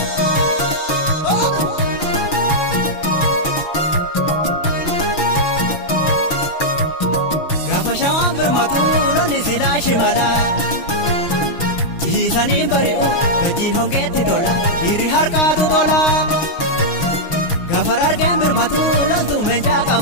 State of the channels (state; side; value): late; right; 6.0 ms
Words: Shimala Jisani bari'u gatiin hongeetti tola Hiri harkaatu tola Gafar argeen birmatu loltuu meeshaa